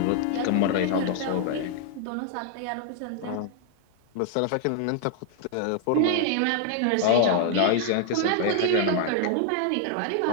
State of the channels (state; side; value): different; both; correlation 0.00